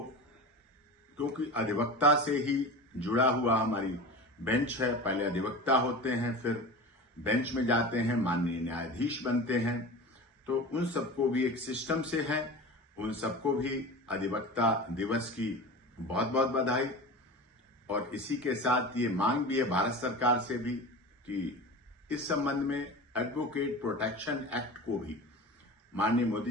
क्योंकि अधिवक्ता से ही जुड़ा हुआ हमारी बेंच है, पहले अधिवक्ता होते हैं, फिर बेंच में जाते हैं, माननीय न्यायाधीश बनते हैं, तो उन सबको भी एक सिस्टम से है, उन सबको भी अधिवक्ता दिवस की बहुत बहुत बधाई। और इसी के साथ ये मांग भी है भारत सरकार से भी कि इस संबंध में एडवोकेट प्रोटेक्शन एक्ट को भी माननीय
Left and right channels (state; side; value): normal; both; correlation 0.32